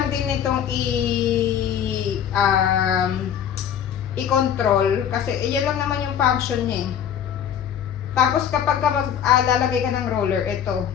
din nitong i-control kasi iyan lang naman yung function niya eh. Tapos kapag lalagay ka ng roller, ito,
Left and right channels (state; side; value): quieter; right; 9.1 dB